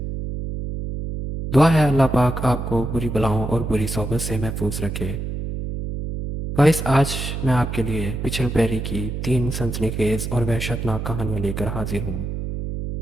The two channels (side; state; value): right; noise; hum, 5 dB below the sound